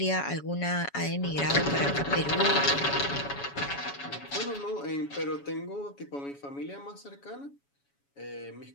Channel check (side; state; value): right; late; 7.1 ms